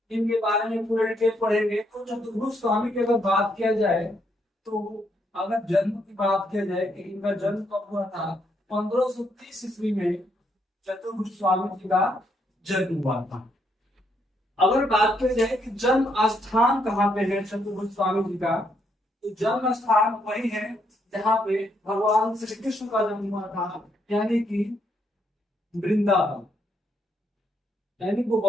इनके बारे में पूरे डिटेल पढ़ेंगे। तो चतुर्भुज स्वामी की अगर बात किया जाए, तो अगर जन्म की बात किया जाए कि इनका जन्म कब हुआ था, 1530 ईस्वी में चतुर्भुज स्वामी जी का जन्म हुआ था। अगर बात की जाए कि जन्म स्थान कहाँ पे है चतुर्भुज स्वामी जी का, तो जन्म स्थान वही है जहाँ पे भगवान श्री कृष्ण का जन्म हुआ था, यानी कि वृंदावन, यानी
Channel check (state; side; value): normal; both; correlation 0.75